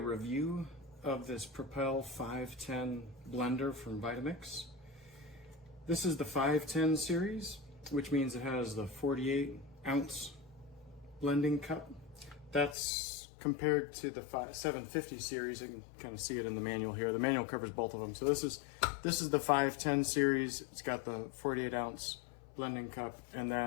of this Propel 510 blender from Vitamix. This is the 510 series, which means it has the 48 ounce blending cup. That's compared to the 750 series. You can kind of see it in the manual here. The manual covers both of them. So this is the 510 series. It's got the 48 ounce blending cup, and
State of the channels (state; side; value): drops out; right; at 12.8 s